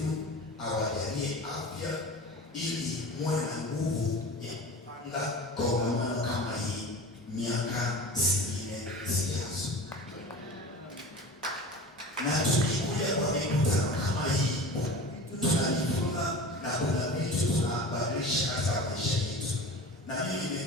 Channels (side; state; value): both; normal; correlation 0.35